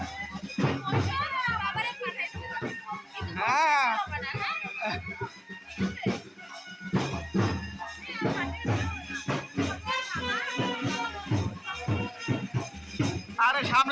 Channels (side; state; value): both; identical; correlation 1.00